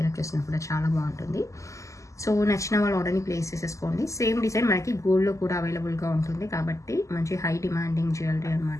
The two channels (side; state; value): right; late; 0.15 ms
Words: చేసినా కూడా చాలా బాగుంటుంది. సో నచ్చిన వాళ్ళు ఆర్డర్ని ప్లేస్ చేసేసుకోండి. సేమ్ డిజైన్ మనకి గోల్డ్లో కూడా అవైలబుల్గా ఉంటుంది కాబట్టి మంచి హై డిమాండింగ్ జ్యువెలరీ